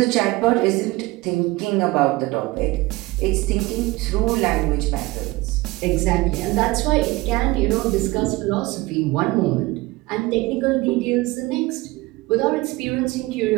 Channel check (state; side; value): quieter; left; 21.1 dB